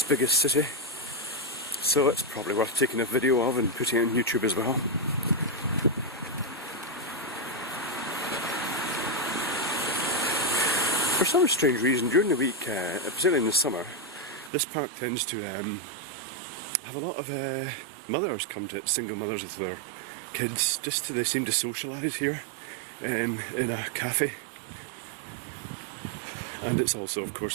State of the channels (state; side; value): drops out; left; at 14.5 s